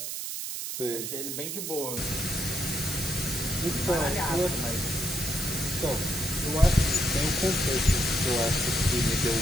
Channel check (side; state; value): right; noise; hiss, 5 dB below the sound